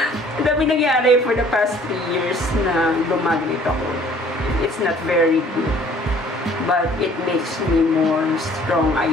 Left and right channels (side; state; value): both; normal; correlation 0.55